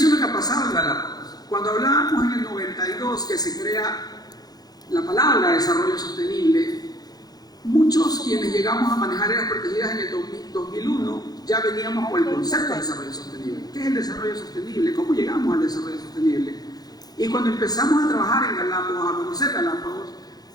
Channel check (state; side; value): late; right; 0.19 ms